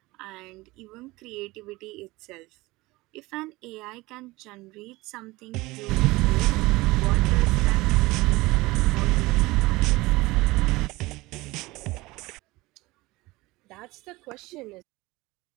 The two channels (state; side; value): quieter; left; 21.0 dB